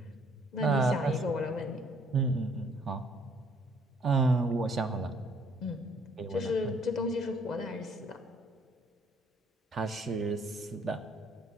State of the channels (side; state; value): both; normal; correlation 0.63